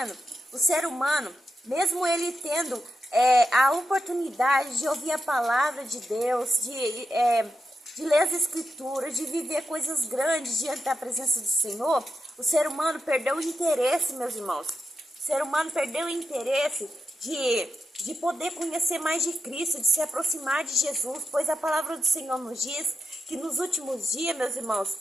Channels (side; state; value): both; normal; correlation 0.86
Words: o ser humano, mesmo ele tendo a oportunidade de ouvir a palavra de Deus, de ler as escrituras, de viver coisas grandes diante da presença do Senhor, o ser humano perdeu o interesse, meus irmãos. O ser humano perdeu o interesse de poder conhecer mais de Cristo, de se aproximar de Jesus, pois a palavra do Senhor nos diz que nos últimos dias, meus irmãos,